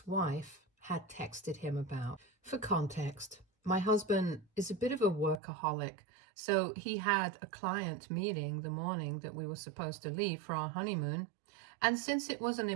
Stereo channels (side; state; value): left; drops out; at 5.4 s